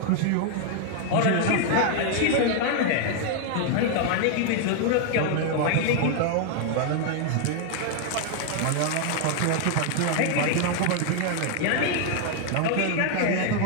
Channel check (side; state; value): both; different; correlation 0.00